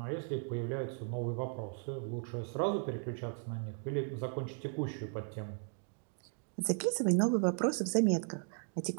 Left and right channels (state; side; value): silent; left; 54 dB below the other